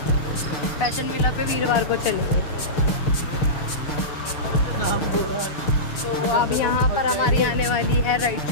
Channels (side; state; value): right; late; 6.6 ms